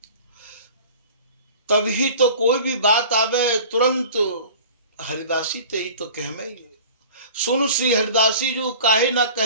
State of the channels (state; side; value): inverted; both; correlation -0.42